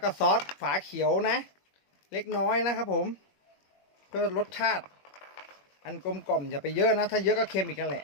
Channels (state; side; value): late; right; 21 ms